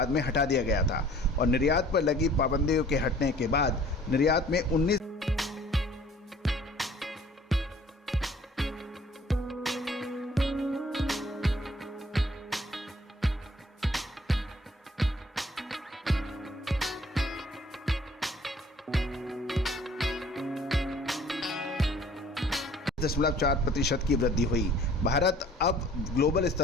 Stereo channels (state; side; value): normal; both; correlation 0.53